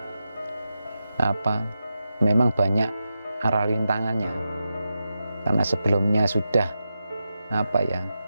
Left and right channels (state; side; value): inverted; both; correlation -0.89